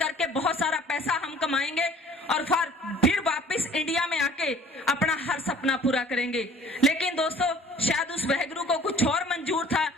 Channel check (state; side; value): normal; both; correlation 0.52